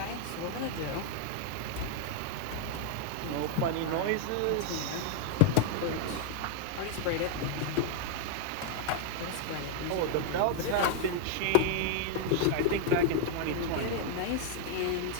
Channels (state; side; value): different; both; correlation 0.00